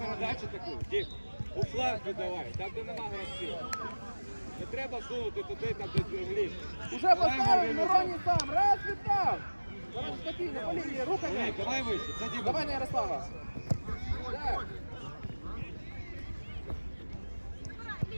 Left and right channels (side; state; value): both; inverted; correlation -1.00